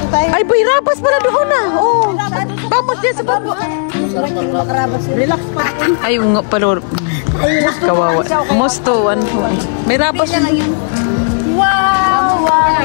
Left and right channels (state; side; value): silent; right; digital silence